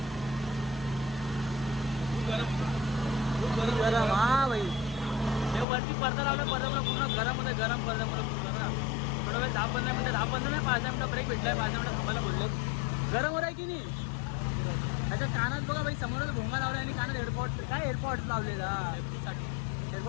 गरम हा भाई. हे वरती पडदा लावला पडदा पूर्ण गरम होतं गरम पडदा पूर्ण ना. थोडा वेळ 10-15 मिनिटं 10-15 नाही 5 मिनिटं ब्रेक भेटलाय 5 मिनिटं थांबायला बोलले. गरम होत आहे की नाही. त्याच्या कानात बघा भाई समोरच भोंगा लावला आणि कानात एअरपॉड काय एअरपॉड लावले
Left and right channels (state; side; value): drops out; right; at 5.7 s